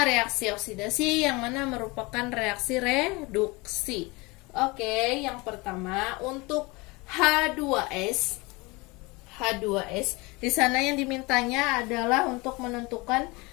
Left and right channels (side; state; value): right; quieter; 25.0 dB